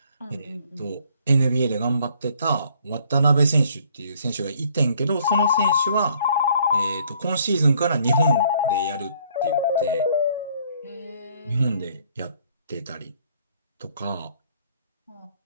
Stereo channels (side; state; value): both; inverted; correlation -0.62